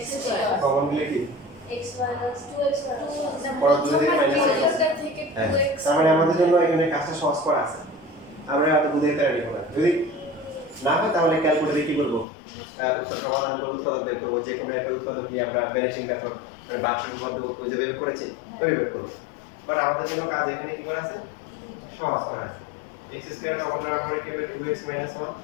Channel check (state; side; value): drops out; right; at 12.2 s